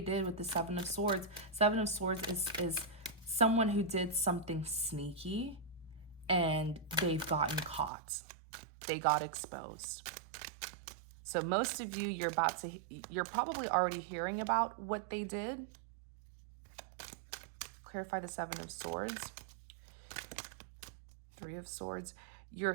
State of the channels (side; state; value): left; drops out; at 7.9 s